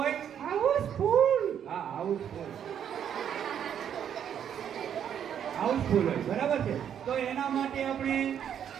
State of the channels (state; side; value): quieter; left; 9.0 dB